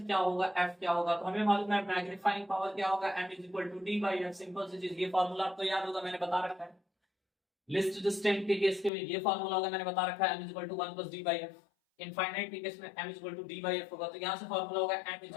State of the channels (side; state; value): right; drops out; at 8.9 s